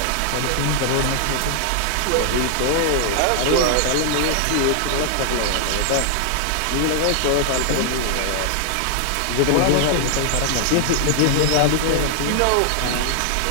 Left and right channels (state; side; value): different; both; correlation 0.00